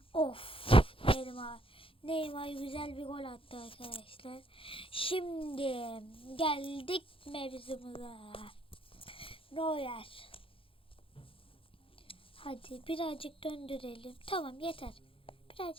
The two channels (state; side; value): late; right; 0.26 ms